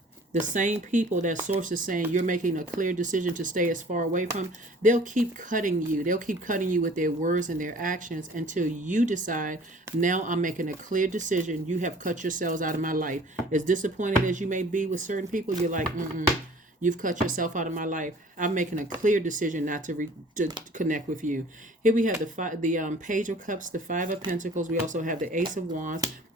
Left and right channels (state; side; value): normal; both; correlation 0.50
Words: the same people that Source is saying you're making a clear decision to stay as far away from, they'll keep cutting you. They'll keep cutting you with their words and their actions until you decide, now I'm making a clear decision. You have cut yourselves out of my life. As disappointed as you may be with certain people, you're like, you've cut yourself out of my life. I'm making a clear decision not to connect with you. Here we have the Page of Cups, the Five of Pentacles. We also have the Ace of Wands.